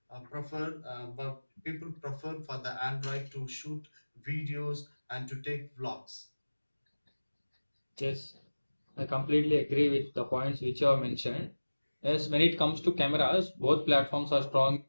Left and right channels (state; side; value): inverted; both; correlation -1.00